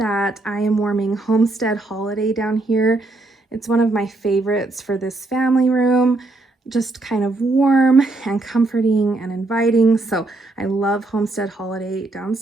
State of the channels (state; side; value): quieter; left; 3.0 dB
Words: I am warming Homestead Holiday down here. It's one of my favorites for this family room, just kind of warm and comforting and inviting. So I love Homestead Holiday